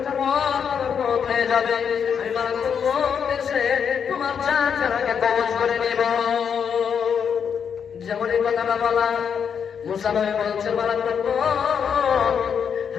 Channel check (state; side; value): quieter; right; 7.2 dB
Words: পর মউত হয়ে যাবে। আমি মালাকুল মউত এসে তোমার জানকে কবজ করে নিব। যেমন এই কথাটা বলা, মুসা নবী বলছে, মালাকুল মউত